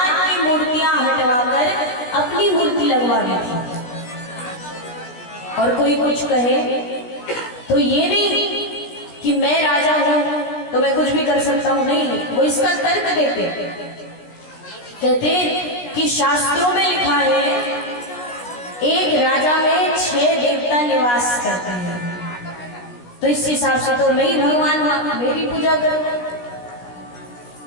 की मूर्तियां हटवाकर अपनी मूर्ति लगवा दी थी। और कोई कुछ कहे तो ये नहीं कि मैं राजा हूं तो मैं कुछ भी कर सकता हूं, नहीं, वो इसका तर्क देते। कहते कि शास्त्रों में लिखा है एक राजा में 6 देवता निवास करते हैं, तो इस हिसाब से तो मैं ही भगवान हूं, मेरी पूजा कर।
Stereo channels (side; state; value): right; late; 16 ms